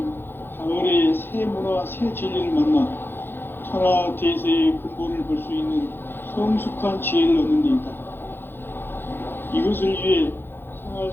가을의 새 문화, 새 진리를 만나 천하 대세의 근본을 볼 수 있는 성숙한 지혜를 얻는 데 있다. 이것을 위해 생활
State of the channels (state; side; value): late; right; 0.10 ms